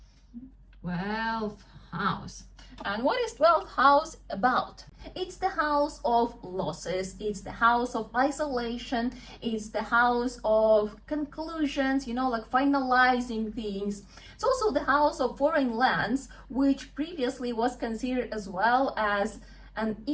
12th house. And what is 12th house about? It's the house of losses, it's the house of isolation, it's the house of conclusions, you know, like finalizing things. It's also the house of foreign lands, which previously was considered as well as an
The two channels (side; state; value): both; identical; correlation 1.00